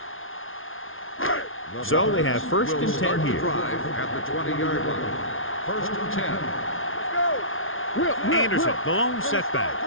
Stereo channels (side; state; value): right; late; 0.59 ms